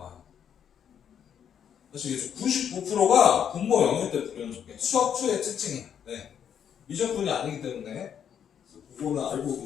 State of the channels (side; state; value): right; quieter; 8.6 dB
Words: 아시겠죠? 99%가 분모 0일 때 불연속해. 수학투의 특징이야. 네. 미적분이 아니기 때문에 그거는 알고